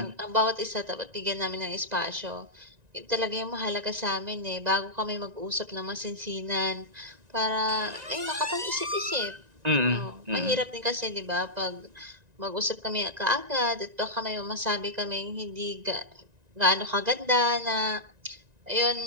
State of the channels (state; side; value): late; left; 1.9 ms